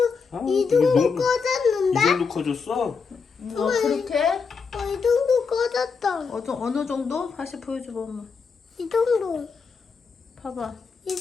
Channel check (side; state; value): right; quieter; 5.3 dB